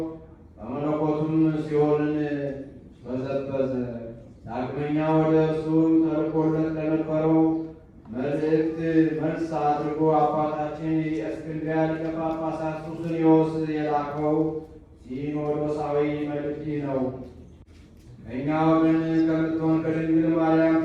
በመለኮቱም ሲኦልን በዘበዘ። ዳግመኛ ወደ እርሱ ተልኮለት ለነበረው መልእክት መልስ አድርጎ አባታችን የእስክንድርያ ሊቀ ጳጳሳት ሱስንዮስ የላከው ሲኖዶሳዊ መልእክት ነው። ከእኛ ወገን ከምትሆን ከድንግል ማርያም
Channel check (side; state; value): both; identical; correlation 1.00